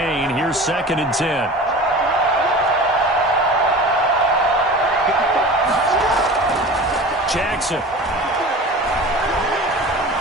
here's 2nd and 10. Jackson.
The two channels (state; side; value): normal; both; correlation 0.36